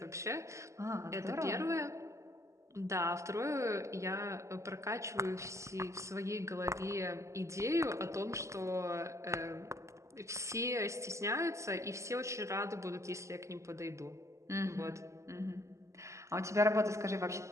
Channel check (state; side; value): late; left; 0.14 ms